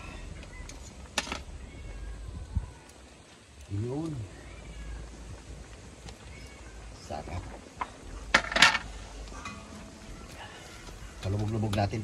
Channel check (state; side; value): identical; both; correlation 1.00